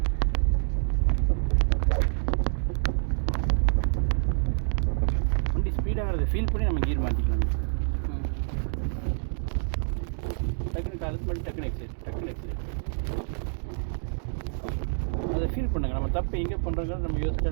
வண்டி ஸ்பீடாகிறத ஃபீல் பண்ணி நம்ம கீர் மாற்றிக்கலாம். டக்குனு காலத்து மட்டும் டக்குனு எக்ஸைட் அதை ஃபீல் பண்ணுங்கள். நம்ம தப்பு எங்கே பண்ணுறோங்கிறது நம்ம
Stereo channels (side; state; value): left; silent; digital silence